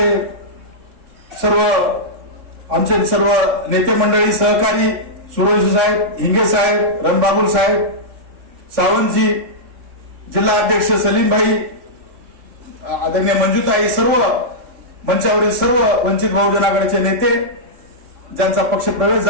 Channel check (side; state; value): left; late; 3.5 ms